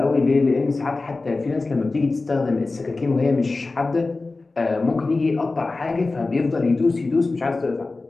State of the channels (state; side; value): quieter; right; 3.5 dB